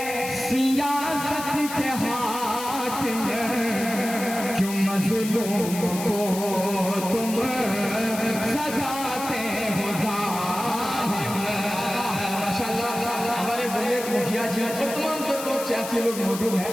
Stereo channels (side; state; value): left; noise; hiss, 9 dB below the sound